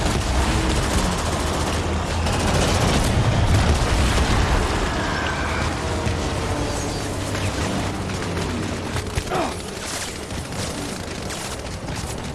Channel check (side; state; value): both; identical; correlation 1.00